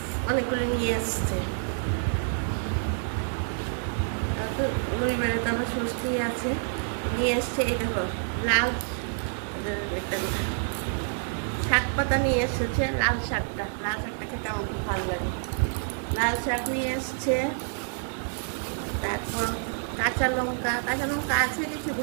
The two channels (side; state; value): left; silent; digital silence